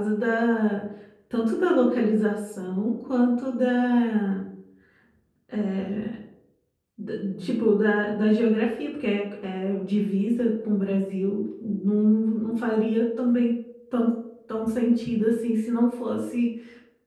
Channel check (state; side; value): identical; both; correlation 1.00